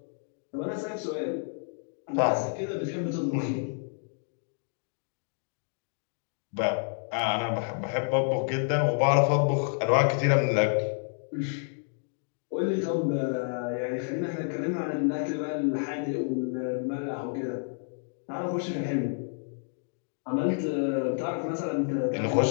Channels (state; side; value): silent; right; digital silence